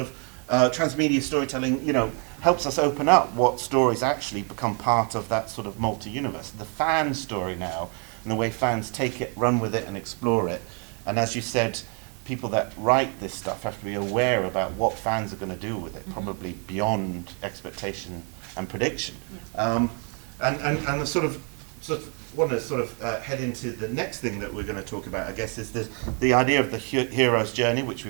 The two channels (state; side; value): quieter; left; 38.3 dB